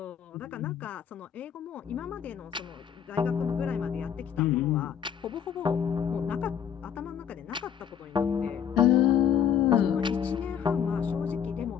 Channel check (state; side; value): quieter; right; 8.4 dB